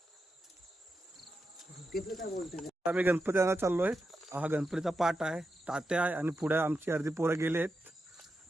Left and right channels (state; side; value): normal; both; correlation 0.88